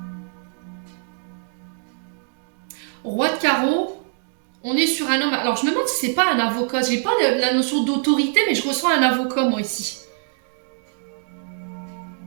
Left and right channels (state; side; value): silent; left; digital silence